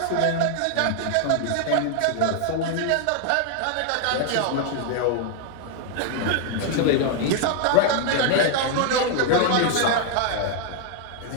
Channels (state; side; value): different; both; correlation 0.00